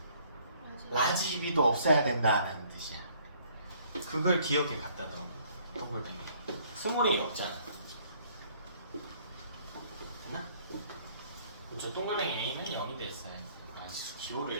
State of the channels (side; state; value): both; inverted; correlation -0.61